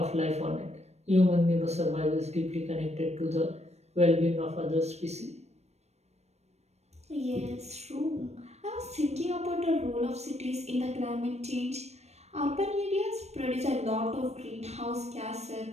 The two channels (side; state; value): left; late; 0.31 ms